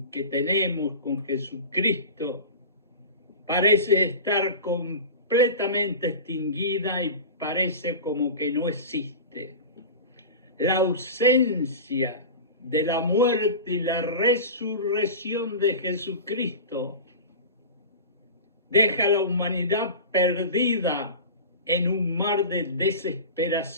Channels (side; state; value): both; inverted; correlation -0.31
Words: que tenemos con Jesucristo parece estar completamente extinguida y parece como que no existe. La ausencia de la muerte y la resurrección de Jesucristo deja a la humanidad perdida en un mar de